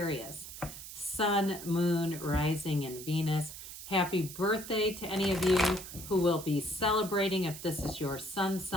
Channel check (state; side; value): noise; right; hiss, 12 dB below the sound